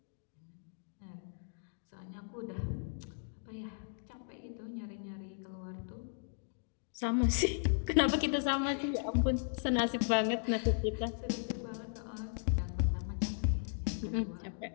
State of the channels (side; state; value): right; silent; digital silence